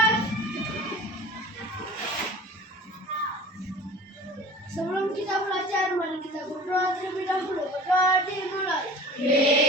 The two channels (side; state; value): both; normal; correlation 0.42